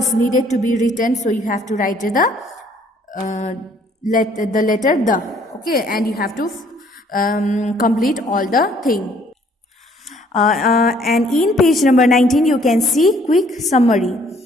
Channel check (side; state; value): both; normal; correlation 0.62